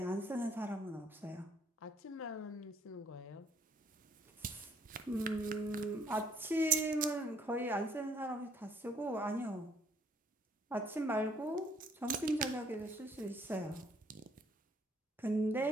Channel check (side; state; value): both; normal; correlation 0.63